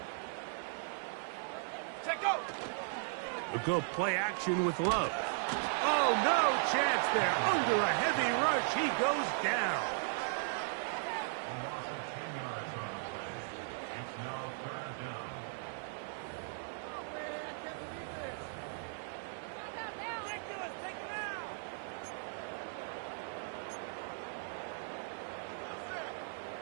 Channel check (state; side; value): silent; left; 53 dB below the other